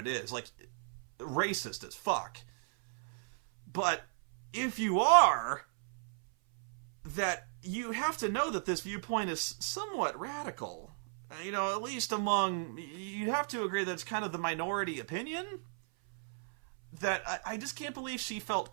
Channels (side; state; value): left; silent; 54 dB below the other